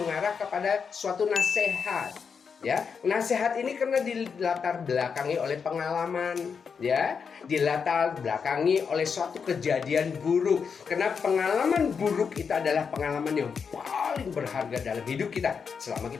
kepada suatu nasihat. Ya, nasihat ini karena dilatar belakangi oleh pengalaman, ya, dilatar belakangi oleh suatu kejadian buruk. Karena pengalaman buruk itu adalah pengalaman yang paling berharga dalam hidup kita selama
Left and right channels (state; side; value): quieter; right; 6.1 dB